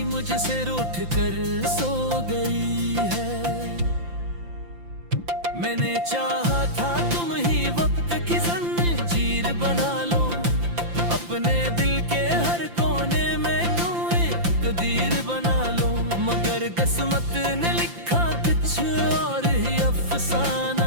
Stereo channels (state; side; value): late; left; 5.8 ms